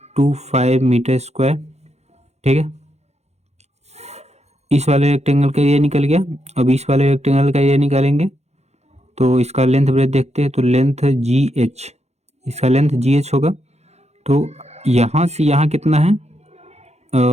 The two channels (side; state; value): left; late; 0.31 ms